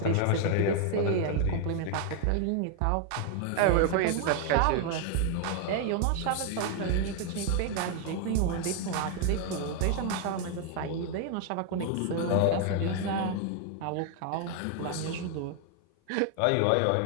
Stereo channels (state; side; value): different; both; correlation 0.00